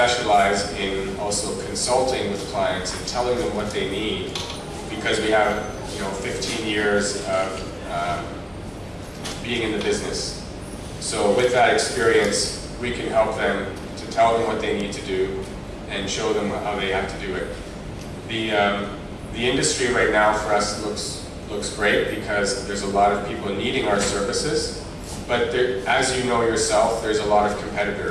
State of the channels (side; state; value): both; identical; correlation 1.00